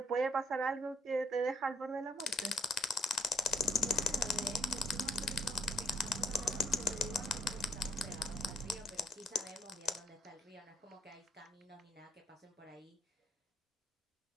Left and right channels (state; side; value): normal; both; correlation 0.65